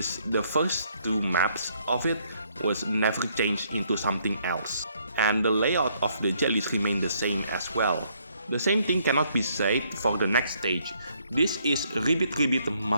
the first 2 maps of it was never changed into something else, and the layout of the jellies remained the same as well. The same thing cannot be said for the next stage. This is Ribbit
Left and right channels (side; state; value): both; inverted; correlation -0.69